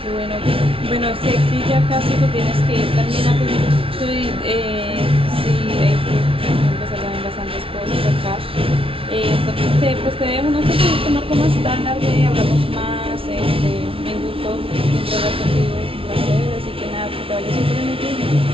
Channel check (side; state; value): left; late; 0.26 ms